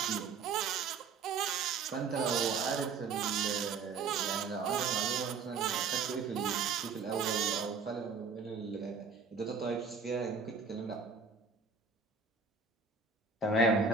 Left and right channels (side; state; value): left; quieter; 5.0 dB